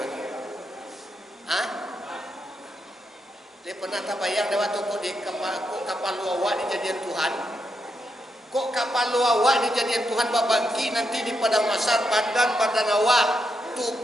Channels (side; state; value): both; normal; correlation 0.82